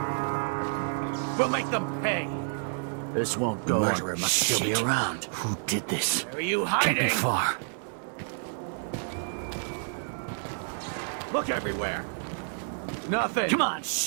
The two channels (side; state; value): left; silent; digital silence